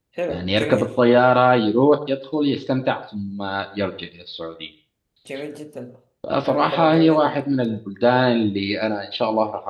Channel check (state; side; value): identical; both; correlation 1.00